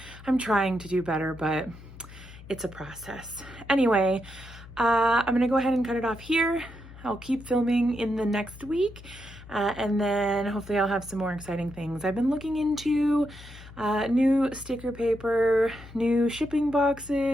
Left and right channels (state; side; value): noise; left; hum, 17 dB below the sound